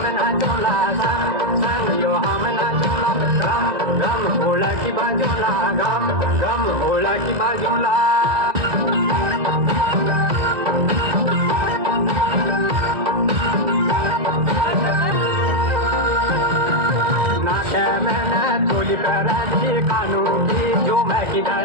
चोला संग संग यो हमना चोला घम घम ढोला की बाजूला घम घम ढोला की बाजूला थोली कराजी कानू की झूमर की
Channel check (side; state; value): left; late; 2.0 ms